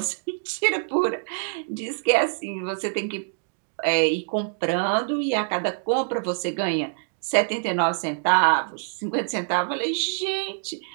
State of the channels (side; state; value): left; silent; digital silence